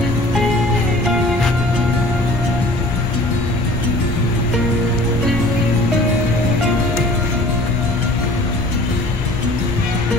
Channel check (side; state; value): left; noise; rumble, 8 dB below the sound